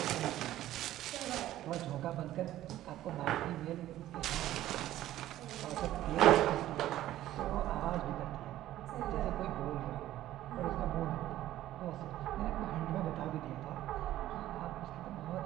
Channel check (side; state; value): left; quieter; 13.9 dB